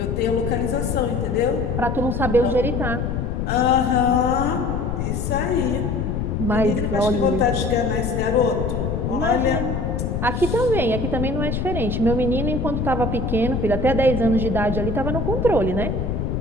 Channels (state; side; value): noise; left; rumble, 1 dB below the sound